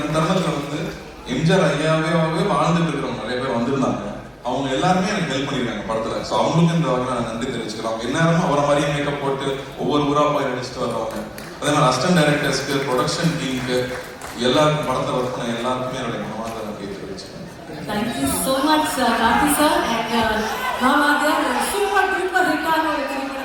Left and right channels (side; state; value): both; identical; correlation 1.00